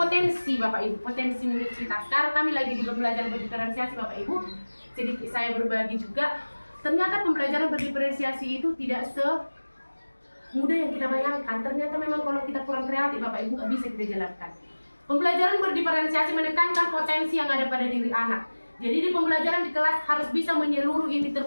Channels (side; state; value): both; inverted; correlation -1.00